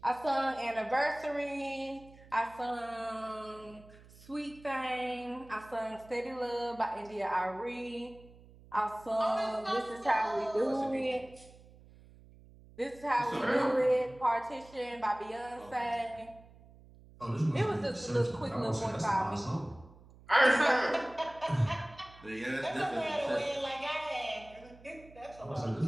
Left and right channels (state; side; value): noise; right; hum, 22 dB below the sound